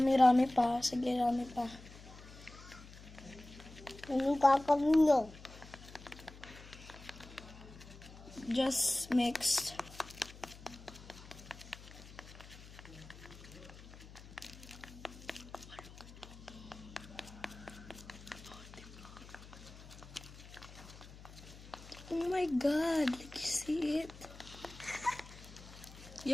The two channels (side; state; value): left; noise; hum, 17 dB below the sound